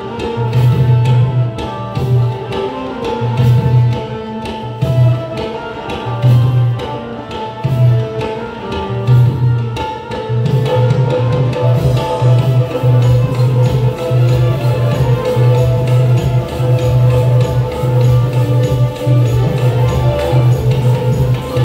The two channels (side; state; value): both; identical; correlation 1.00